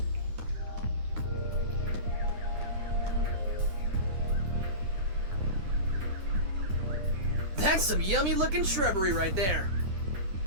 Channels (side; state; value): left; late; 10 ms